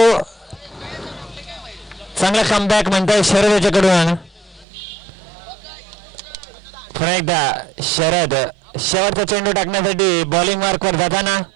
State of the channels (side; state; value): left; drops out; at 4.7 s